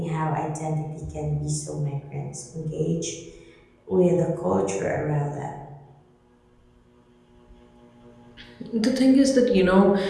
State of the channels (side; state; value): both; identical; correlation 1.00